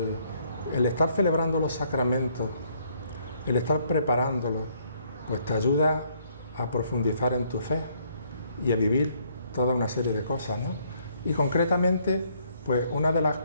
estar celebrando los sacramentos, el estar preparándolos, pues te ayuda a profundizar en tu fe y a vivir toda una serie de cosas, ¿no? Y concretamente, pues una de las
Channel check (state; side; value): inverted; both; correlation -0.68